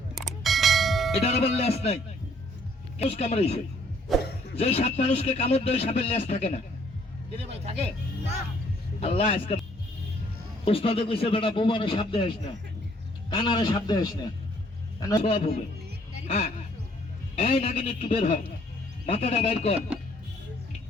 এটার আবার লেজ নাই, কেউ কামড়াইছে। যে সাপ মানুষকে কামড় দেয় সাপের লেজ থাকে না। কিরে ভাই থাকে? আল্লাহ আজকে উস্তাদে কইছে বেটা বোমারে সাপ দেস না, কানারে সাপ দেস না, কেন সব হবে। হ্যাঁ, এই নাগিন একটু বের হয়, মাথাটা বাইর কর,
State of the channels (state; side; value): normal; both; correlation 0.62